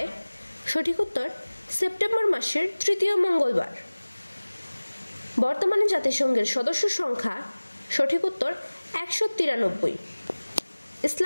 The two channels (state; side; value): inverted; both; correlation -1.00